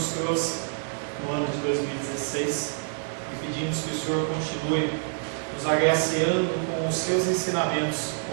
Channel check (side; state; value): left; silent; 60 dB below the other